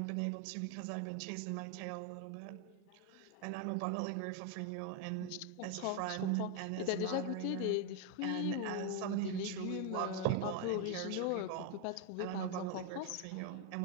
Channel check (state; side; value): different; both; correlation 0.01